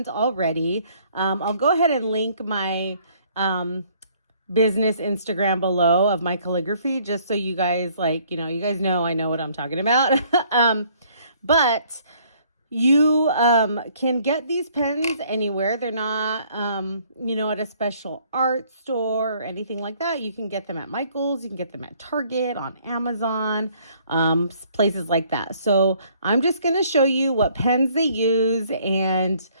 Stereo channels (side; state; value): both; inverted; correlation -0.62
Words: already. I'll go ahead and link my business Instagram below of my calligraphy, just so you guys you guys know I know what I'm talking about. But you can get these pens anywhere. They're not, at a special art store or anything like that. You can get them at Michael's. You can get them at Target, on Amazon, places like that. So I'm just going to show you what pens they use and